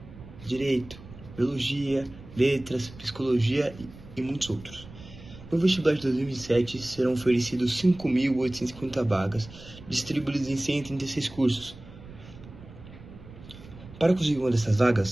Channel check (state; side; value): noise; right; rumble, 18 dB below the sound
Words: direito, biologia, letras, psicologia e muitos outros. No vestibular de 2027 serão oferecidos 5.850 vagas, distribuídas em 136 cursos. Para conseguir uma dessas